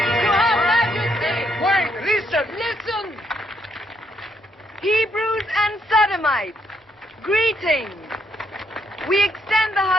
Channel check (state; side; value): normal; both; correlation 0.74